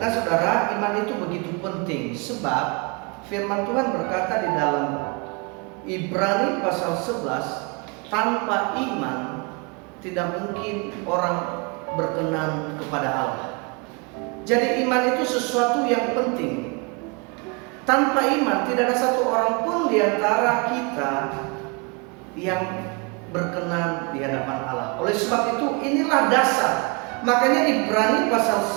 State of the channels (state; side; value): quieter; left; 31.2 dB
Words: saudara, iman itu begitu penting sebab firman Tuhan berkata di dalam Ibrani pasal 11, tanpa iman tidak mungkin orang berkenan kepada Allah. Jadi iman itu sesuatu yang penting. Tanpa iman tidak ada satu orang pun di antara kita yang berkenan di hadapan Allah. Oleh sebab itu inilah dasar. Makanya Ibrani pasal